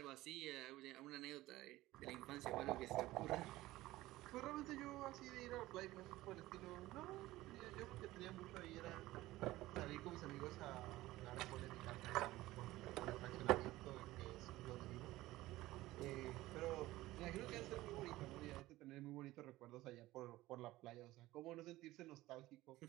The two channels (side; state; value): left; quieter; 17.3 dB